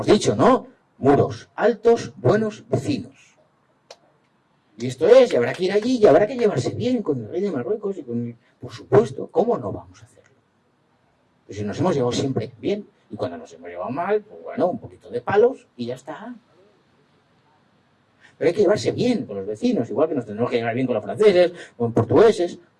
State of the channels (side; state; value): both; identical; correlation 1.00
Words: dicho, ¿no? Muros altos, buenos vecinos. Y esto es, y habrá que ir allí, y habrá que llevarse bien con el rey de Marruecos y con... Por supuesto, ¿cómo no vamos a hacerlo? Pues si nos hemos llevado siempre bien, y cuando nos hemos llevado mal, pues bueno, un poquito de palos y ya está. Pero hay que llevarse bien con los vecinos, igual que nos tenemos que llevar bien con los franceses, con portugueses,